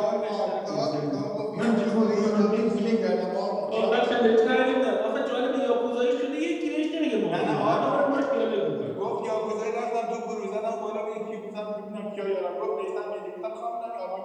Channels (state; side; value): identical; both; correlation 1.00